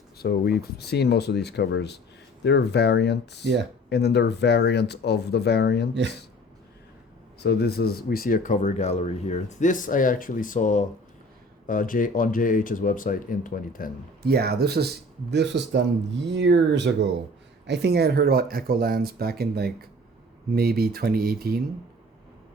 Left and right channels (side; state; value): both; normal; correlation 0.47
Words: so we've seen most of these covers. There are variants. Yeah. And then there are variants of the variants. Yeah. So we see a cover gallery here. This I actually saw on JH's website in 2010. Yeah, this was done years ago. I think I had heard about Echolands back in like maybe 2018,